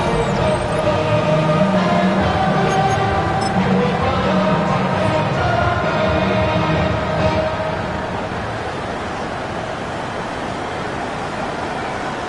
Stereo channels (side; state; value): both; identical; correlation 1.00